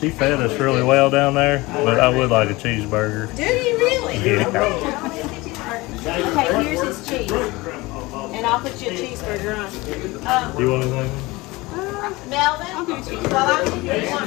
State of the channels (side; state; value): right; quieter; 21.8 dB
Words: fed us really well down there, but I would like a cheeseburger. Do you really? Yeah. Okay, here's his cheese. And I'll put you a cheeseburger on. You want anything? Melvin? Well, you want